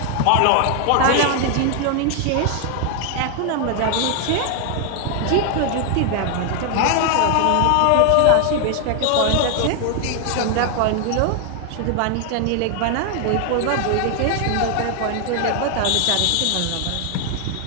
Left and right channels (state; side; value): different; both; correlation 0.00